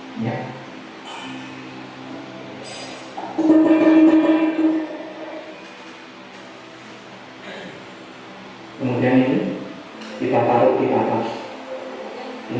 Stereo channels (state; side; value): identical; both; correlation 1.00